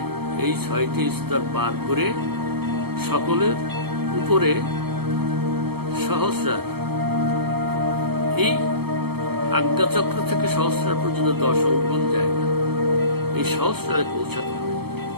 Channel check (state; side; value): late; left; 0.96 ms